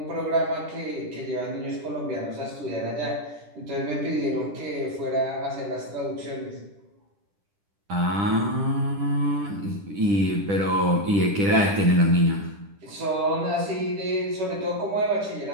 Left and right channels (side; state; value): left; late; 10 ms